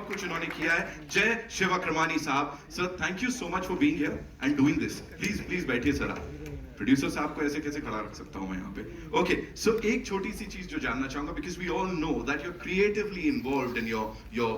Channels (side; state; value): both; identical; correlation 1.00